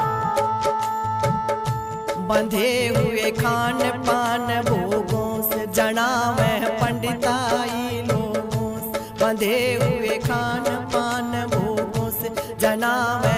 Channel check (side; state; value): both; identical; correlation 1.00